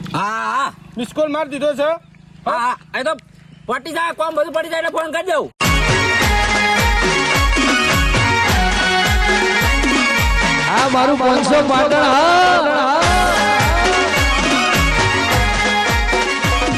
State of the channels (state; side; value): identical; both; correlation 1.00